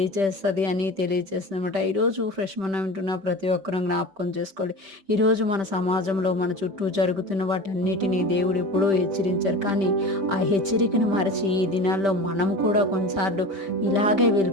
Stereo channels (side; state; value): left; late; 5.1 ms